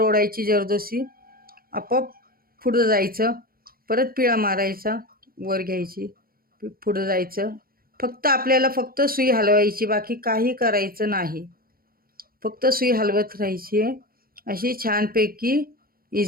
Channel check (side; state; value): left; late; 0.43 ms